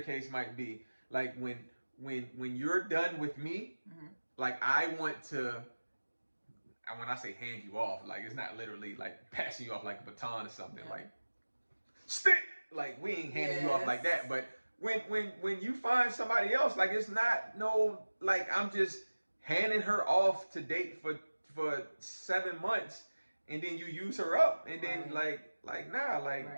case might be. Like when you're done with me, mm-hmm. like I want to. And when I say hand you off, like it's not literally like passing you off like a baton or something. Yeah. Like stick. Like we ain't handing you off like that. But when you find somebody else, like it's not like I'm just handing her off to date for 7 months, and then you use her up, and then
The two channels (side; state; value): both; inverted; correlation -1.00